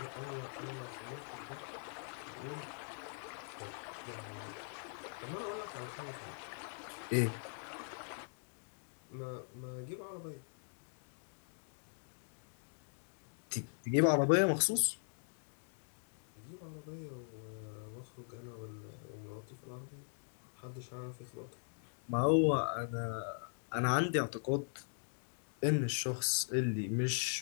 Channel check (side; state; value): right; silent; digital silence